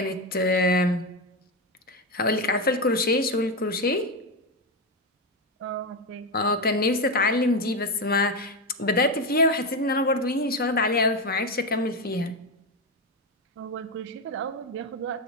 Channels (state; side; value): normal; both; correlation 0.12